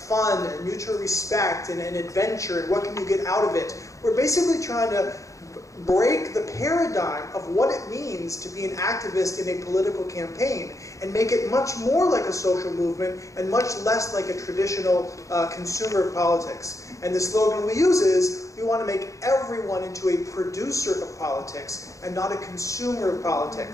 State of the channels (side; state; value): right; late; 0.15 ms